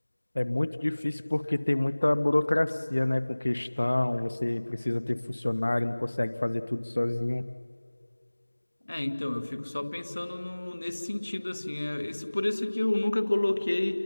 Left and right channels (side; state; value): both; inverted; correlation -1.00